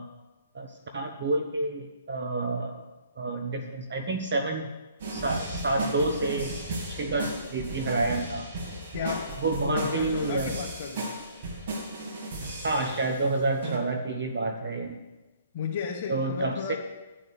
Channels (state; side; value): inverted; both; correlation -0.58